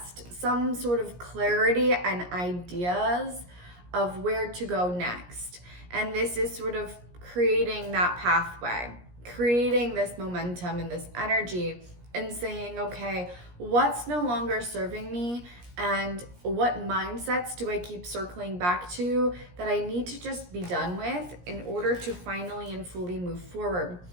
some sort of clarity and ideas of where to go next. And this is sort of creating that pathway, creating this momentum and this energy, and saying, okay, what's no longer serving me, and what mindsets do I keep circling back to that I need to just be done with in order to finally and fully move forward.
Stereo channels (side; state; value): left; late; 17 ms